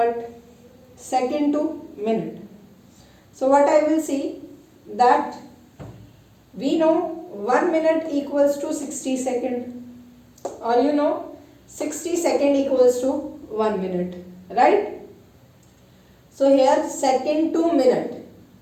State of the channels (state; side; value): identical; both; correlation 1.00